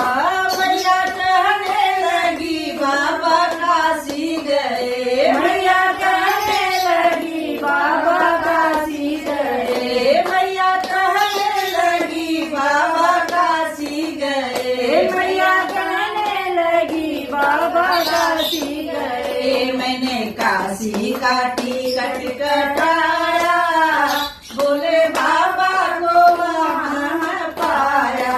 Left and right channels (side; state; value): both; identical; correlation 1.00